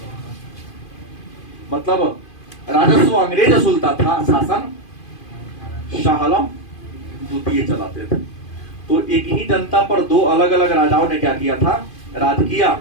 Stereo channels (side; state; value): right; late; 2.5 ms